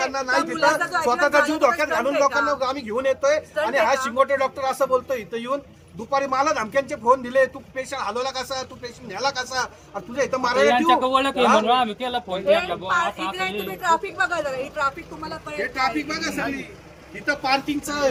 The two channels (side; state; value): both; identical; correlation 1.00